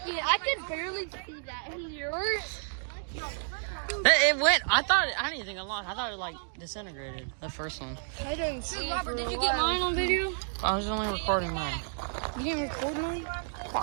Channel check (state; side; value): silent; left; digital silence